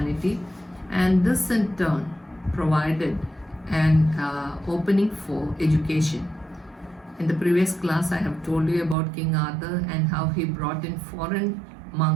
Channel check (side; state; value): left; drops out; at 9.0 s